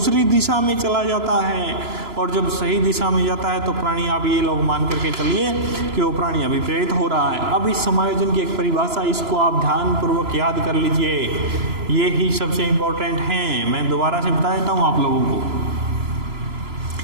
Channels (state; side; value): late; left; 3.0 ms